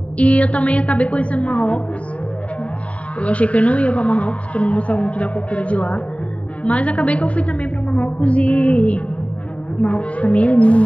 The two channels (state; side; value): late; right; 0.066 ms